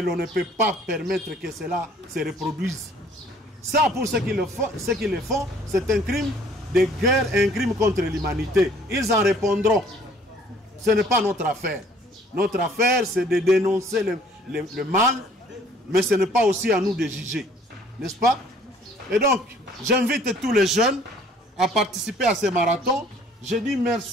l'on ne peut pas permettre que cela se reproduise. Ça, pour ceux qui le font, c'est un crime de guerre, un crime contre l'humanité. Ils en répondront. Ce n'est pas notre affaire. Notre affaire, c'est de dénoncer le mal, mais ce n'est pas aussi à nous de juger. N'est-ce pas? Et donc, j'invite tous les jeunes à participer à ces marathons. Je dis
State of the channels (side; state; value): both; normal; correlation 0.57